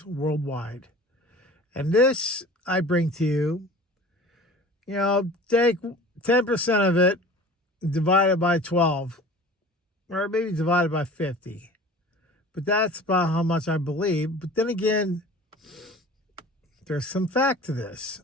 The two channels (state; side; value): normal; both; correlation 0.42